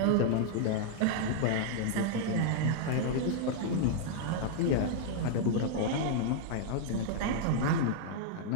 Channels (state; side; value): different; both; correlation -0.01